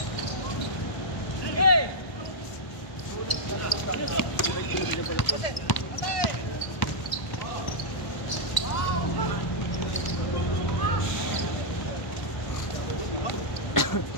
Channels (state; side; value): late; right; 1.1 ms